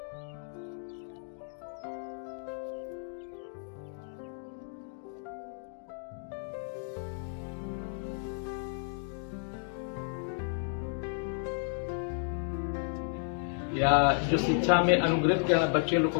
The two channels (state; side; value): silent; right; 56 dB below the other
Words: या जो शिक्षा में अनुग्रहित बच्चे लोग को